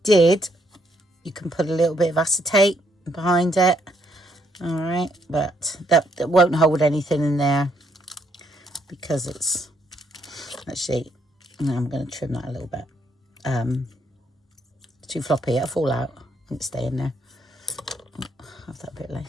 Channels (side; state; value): both; normal; correlation 0.72